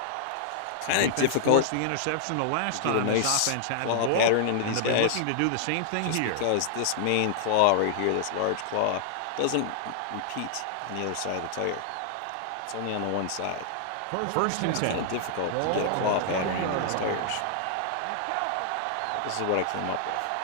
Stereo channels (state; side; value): different; both; correlation -0.01